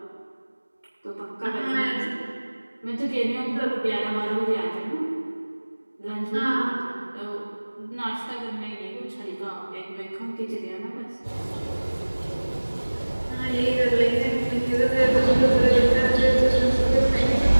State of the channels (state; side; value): inverted; both; correlation -1.00